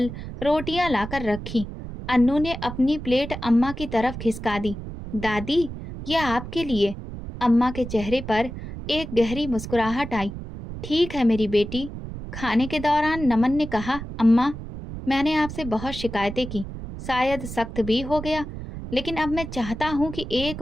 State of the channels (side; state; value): right; noise; rumble, 10 dB below the sound